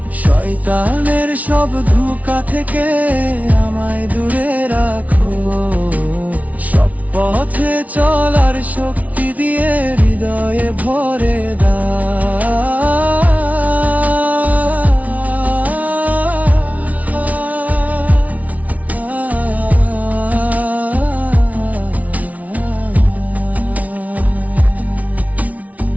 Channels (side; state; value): left; late; 0.070 ms